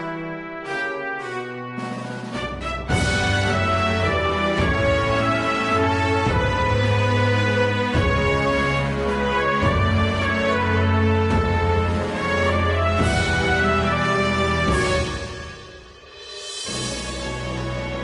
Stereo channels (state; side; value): identical; both; correlation 1.00